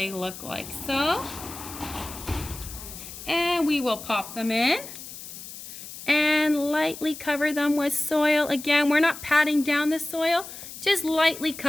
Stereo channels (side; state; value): left; noise; hiss, 13 dB below the sound